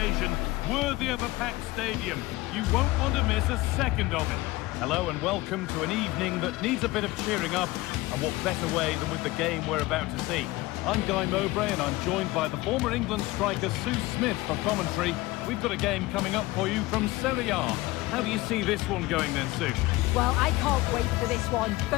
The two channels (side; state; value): right; quieter; 19.6 dB